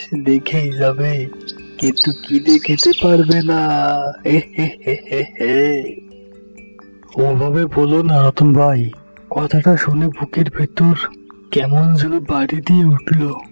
দেখেই যাবে, কিন্তু কিনে খেতে পারবে না। ওভাবে বলো না রতন ভাই, কথাটা শুনে বুকের ভেতর কেমন যেন বাড়ি দিয়ে উঠল।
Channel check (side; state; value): both; inverted; correlation -1.00